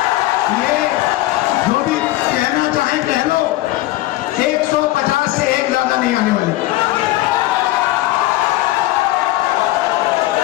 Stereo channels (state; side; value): quieter; right; 17.2 dB